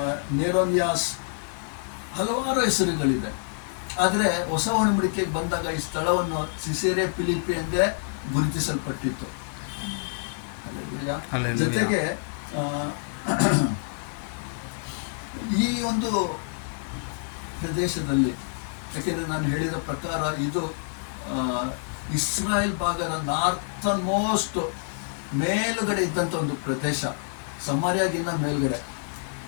ನೇರೋನಿಯಾಸ್, ಹಲವಾರು ಹೆಸರುಗಳಿದೆ. ಆದರೆ ಹೊಸ ಒಡಂಬಡಿಕೆಗೆ ಬಂದಾಗ ಈ ಸ್ಥಳವನ್ನು ಸಿಸೇರಿಯಾ ಫಿಲಿಪಿ ಎಂದೇ ಗುರುತಿಸಲ್ಪಟ್ಟಿತ್ತು. ಜೊತೆಗೆ ಈ ಒಂದು ಪ್ರದೇಶದಲ್ಲಿ, ಯಾಕೆಂದರೆ ನಾನು ಹೇಳಿದ ಪ್ರಕಾರ ಇದು ಇಸ್ರಾಯೇಲ್ ಭಾಗದ ನಾರ್ತನ್ ಮೋಸ್ಟ್ ಮೇಲುಗಡೆ ಇದ್ದಂಥ ಒಂದು ಪ್ರದೇಶ, ಸಮಾರ್ಯಾಗಿನ್ನ ಮೇಲ್ಗಡೆ.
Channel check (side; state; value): right; silent; digital silence